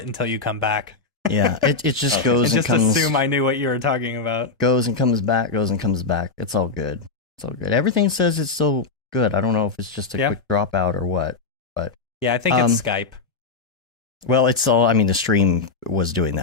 until you come back. Yeah, it just goes and comes. Just assume I knew what you were talking about. Goes and comes back, goes and comes back. It's all good. It's all good. Everything says it's still good. I don't know if it's just a quick dropout or what. But yeah, I think it's Skype. Well, it's all. The stream was doing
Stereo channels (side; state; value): right; quieter; 4.3 dB